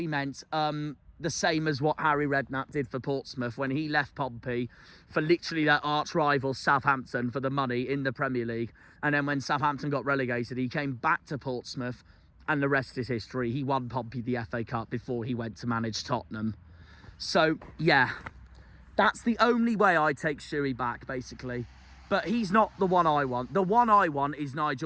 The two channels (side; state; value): both; identical; correlation 1.00